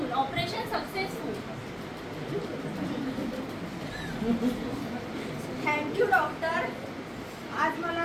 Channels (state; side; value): identical; both; correlation 1.00